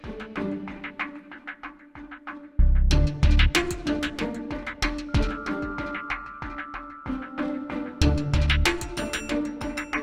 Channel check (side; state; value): both; identical; correlation 1.00